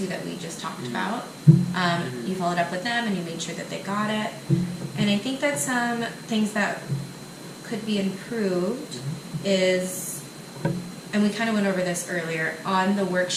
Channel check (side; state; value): both; identical; correlation 1.00